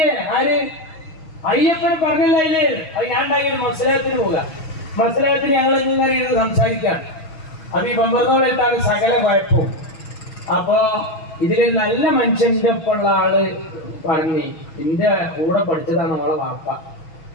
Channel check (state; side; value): late; right; 6.3 ms